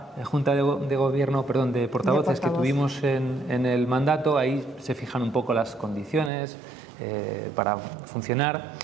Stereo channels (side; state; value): left; drops out; at 6.3 s